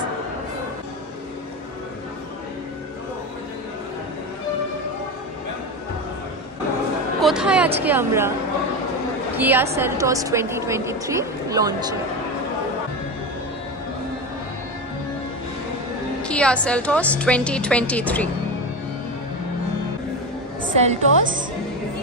কোথায় আজকে আমরা? Kia Seltos 2023 লঞ্চে। Kia Seltos 2023 Seltos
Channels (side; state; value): both; normal; correlation 0.20